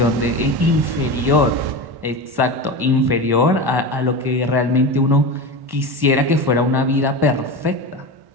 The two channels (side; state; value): left; late; 1.1 ms